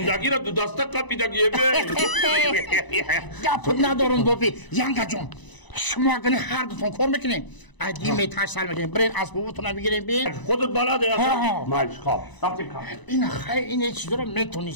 را دو دسته قپیدگیه گپ ندارم بوبی ینگا جان شما اگر هر دوتون کار میکنین ادی میتاش سال میکنین برین اسبابتون رو بگیرین بین خودت بلده مالش خواب رفتیم کار این خیلی این چیزا رو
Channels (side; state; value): right; late; 1.0 ms